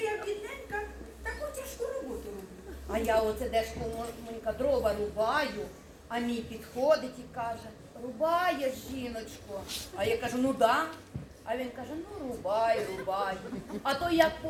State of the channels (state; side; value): identical; both; correlation 1.00